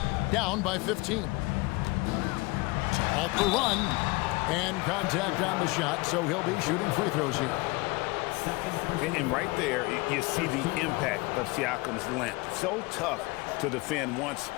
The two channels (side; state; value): right; quieter; 24.7 dB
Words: Down by 15. To halt the run. And contact on the shot, so he'll be shooting free throws here. And right there, you see the impact of Siakam's length. So tough to defend once